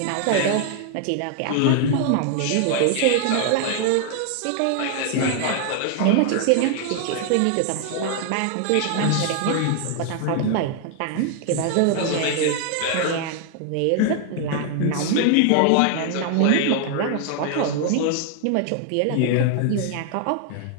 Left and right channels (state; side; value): different; both; correlation 0.00